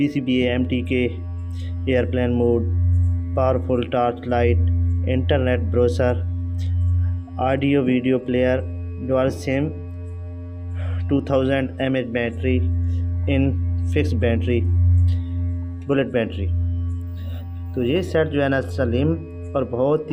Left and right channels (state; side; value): identical; both; correlation 1.00